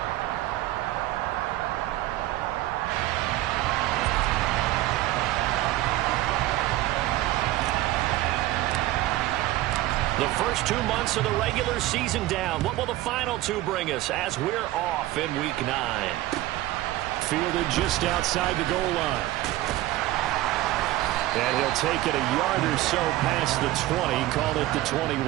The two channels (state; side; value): quieter; left; 16.2 dB